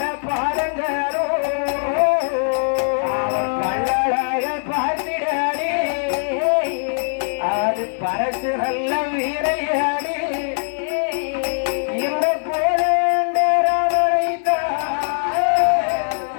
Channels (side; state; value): right; silent; digital silence